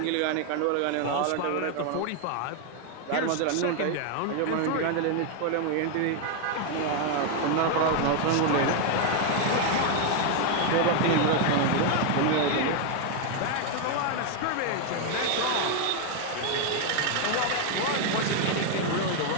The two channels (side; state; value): both; different; correlation 0.01